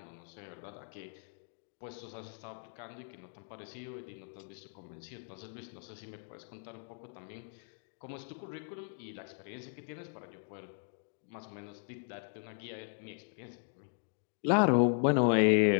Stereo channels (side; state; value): right; silent; digital silence